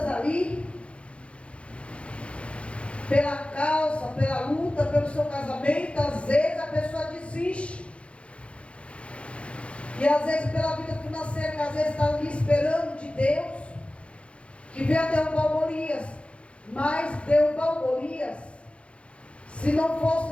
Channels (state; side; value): late; right; 0.060 ms